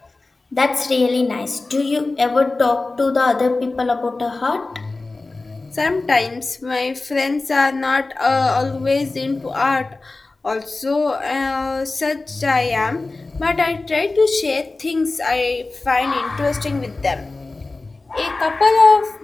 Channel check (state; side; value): quieter; right; 3.4 dB